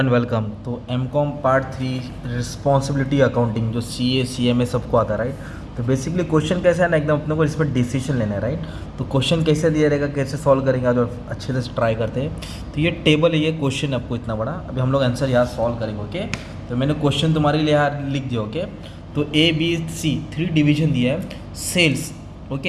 welcome. तो एमकॉम पार्ट 3 रिस्पॉन्सिबिलिटी अकाउंटिंग जो सीए सीएमए सबको आता है, राइट। तो बेसिकली क्वेश्चन कैसा है ना, एकदम अपने को इसमें डिसीजन लेना है, राइट। तो क्वेश्चन कैसे दिया रहेगा, कैसे सॉल्व करेंगे आज, और अच्छे से ट्राई करते हैं। तो ये टेबल है, ये क्वेश्चन आपको इतना बड़ा, अभी हम लोग आंसर यहाँ सॉल्व करेंगे, ओके। तो मैंने क्वेश्चन तुम्हारे लिए यहाँ लिख दिया, ओके। तो ए बी सी 3 डिवीजन दिया है। सेल्स,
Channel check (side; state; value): both; identical; correlation 1.00